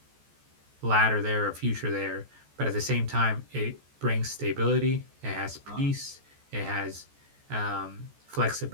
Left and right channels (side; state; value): left; late; 14 ms